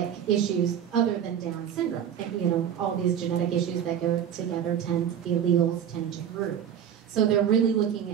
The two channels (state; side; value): quieter; left; 9.1 dB